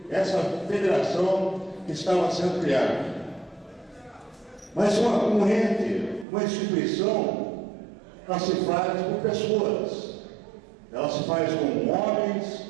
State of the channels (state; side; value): drops out; left; at 6.2 s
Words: essa federação que estava sendo criada. Mas um ente, uma instituição, ela se faz por pessoas. Ela se faz com homens